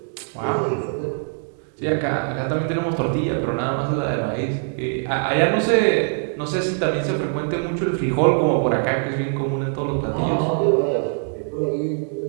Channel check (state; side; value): silent; left; 64 dB below the other